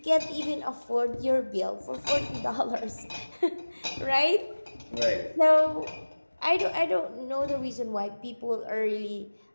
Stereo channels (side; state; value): both; inverted; correlation -1.00